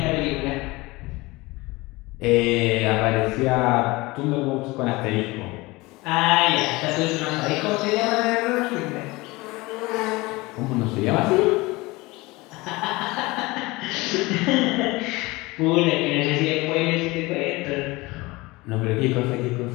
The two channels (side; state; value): right; quieter; 22.2 dB